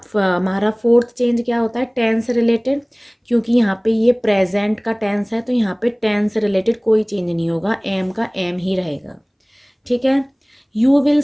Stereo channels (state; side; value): identical; both; correlation 1.00